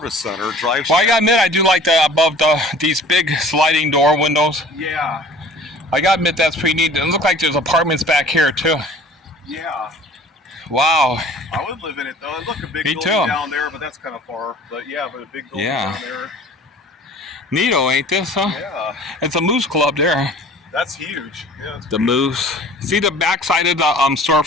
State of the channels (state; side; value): normal; both; correlation 0.47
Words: center. Well, I gotta admit, I do like the above these big sliding door windows. Yeah. I gotta admit, that's pretty neat. It looks like there's apartments back here, too. Yeah. Wow. I would live in it, though. Look, a big Me building too. down there, but that's kind of far. But yeah, but a big building down there. Neato, ain't this, huh? Yeah. It's a Moose Club there. That's huge. Yeah. It's The Moose. See the backside of the